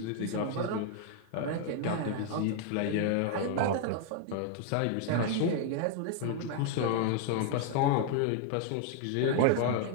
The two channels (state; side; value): different; both; correlation 0.00